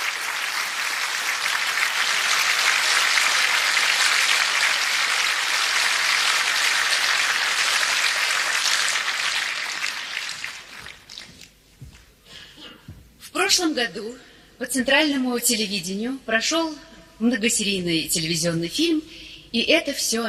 В прошлом году по центральному телевидению прошел многосерийный телевизионный фильм «И это все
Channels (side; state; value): both; identical; correlation 1.00